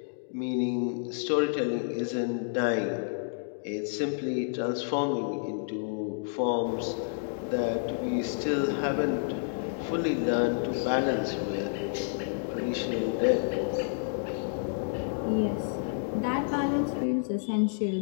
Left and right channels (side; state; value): right; silent; digital silence